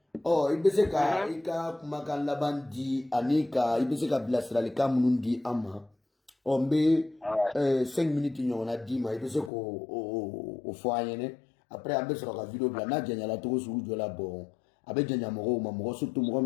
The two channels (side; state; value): right; drops out; at 9.5 s